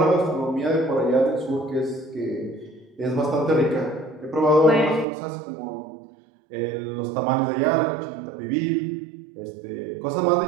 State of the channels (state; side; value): drops out; left; at 5.1 s